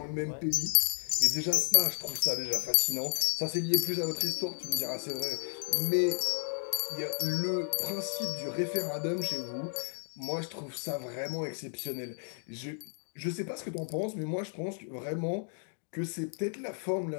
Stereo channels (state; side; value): silent; right; 56 dB below the other